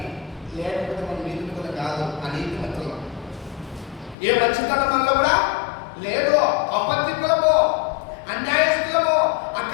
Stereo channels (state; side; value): drops out; right; at 4.2 s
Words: లేకపోతే మనం నీతిమంతులు కాదు. ఆ నీతిమంతులు ఏ మంచితనం వల్ల కూడా లేదు. అబద్ధికులమో, అన్యాయస్తులమో,